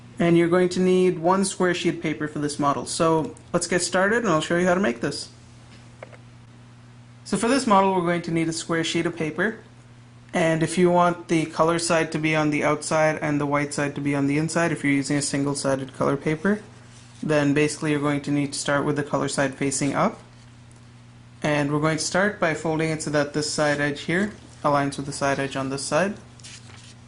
And you're going to need one square sheet of paper for this model. So let's get started and I'll show you how to make this. So for this model we're going to need a square sheet of paper, and if you want the color side to be on the outside and the white side to be on the inside, if you're using a single-sided color paper, then basically you're going to need to start with the color side facing up. And we're going to start by folding it so that this side edge here aligns with the side edge on this side.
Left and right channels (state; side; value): identical; both; correlation 1.00